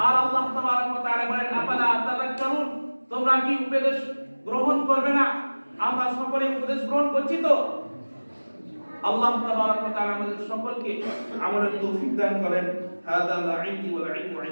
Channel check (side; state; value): both; inverted; correlation -1.00